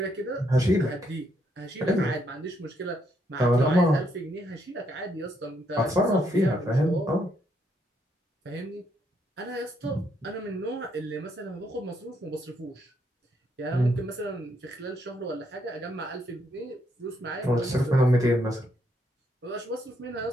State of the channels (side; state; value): both; normal; correlation 0.74